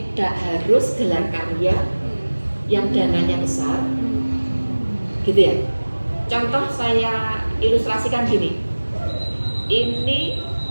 harus gelar karya yang dananya besar. Gitu ya. Contoh saya ilustrasikan gini. Ini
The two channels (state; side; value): inverted; both; correlation -1.00